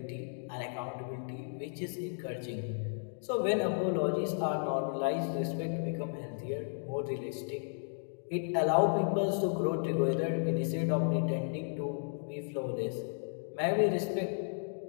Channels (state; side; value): silent; right; digital silence